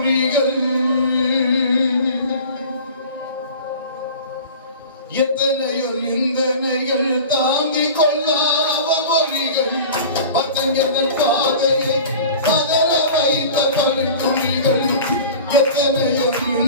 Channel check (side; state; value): both; inverted; correlation -0.39